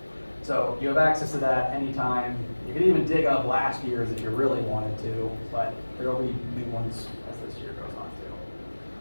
So you have access to that anytime. You can even dig up last year's if you really wanted to, but there will be new ones as this year goes on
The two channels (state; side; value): inverted; both; correlation -1.00